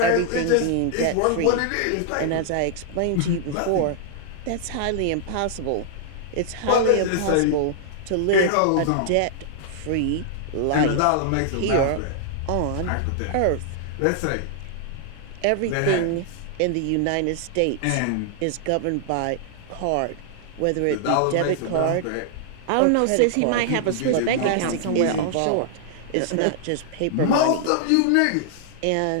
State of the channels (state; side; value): different; both; correlation -0.01